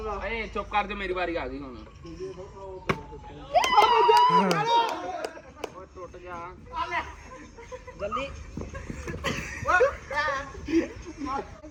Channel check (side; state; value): both; identical; correlation 1.00